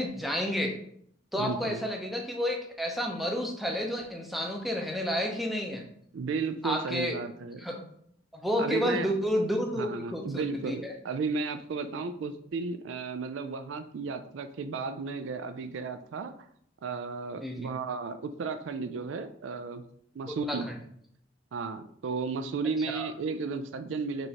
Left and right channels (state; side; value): normal; both; correlation 0.50